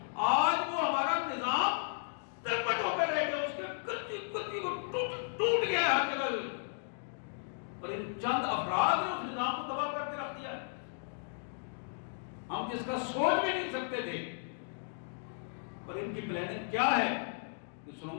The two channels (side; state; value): right; silent; digital silence